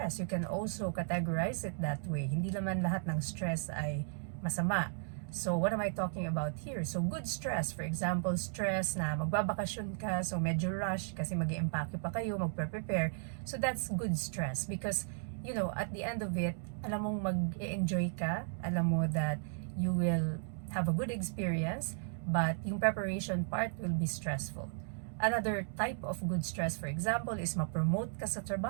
You can also categorize it that way. Hindi naman lahat ng stress ay masama. So, what am I talking about here? So, good stress. For example, stress na magbabakasyon ka, so medyo rush kasi mag-i-empake pa kayo, magpe-prepare. So, that's good stress because, at the end of it, alam mong mag-enjoy ka, alam mo that you will have a good experience, but yung preparation part will be stressful. Another type of good stress, for example, is ma-promote ka sa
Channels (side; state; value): left; silent; digital silence